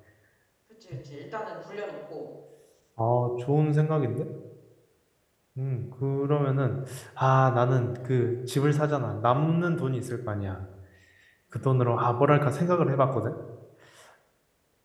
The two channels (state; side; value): identical; both; correlation 1.00